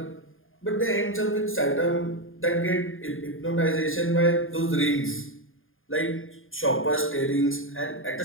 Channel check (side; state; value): right; late; 0.59 ms